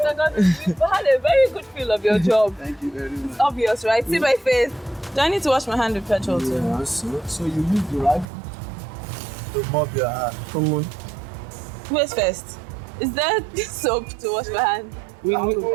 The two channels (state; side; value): drops out; left; at 8.2 s